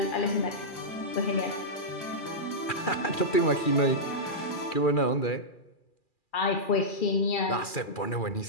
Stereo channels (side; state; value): right; late; 2.4 ms